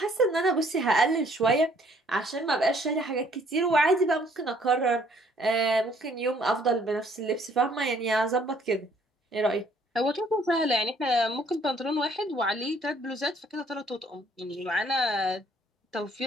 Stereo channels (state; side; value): normal; both; correlation 0.62